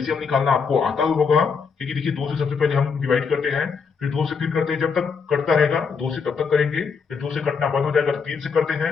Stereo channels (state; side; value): quieter; right; 5.6 dB